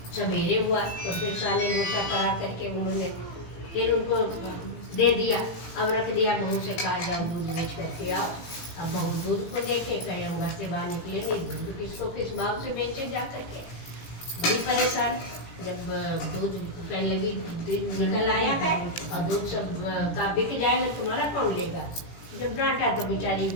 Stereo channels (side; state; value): right; late; 17 ms